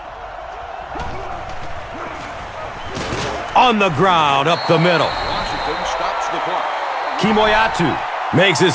On the ground, up the middle. Washington stops the clock. Kimoyatu makes his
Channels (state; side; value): identical; both; correlation 1.00